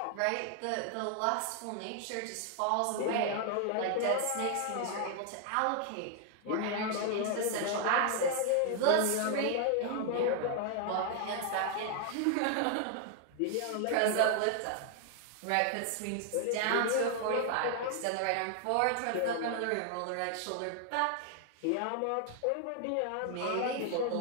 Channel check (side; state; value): both; different; correlation 0.00